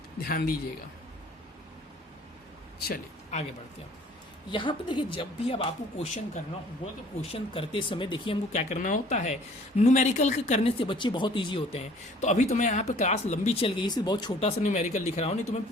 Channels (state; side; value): normal; both; correlation 0.53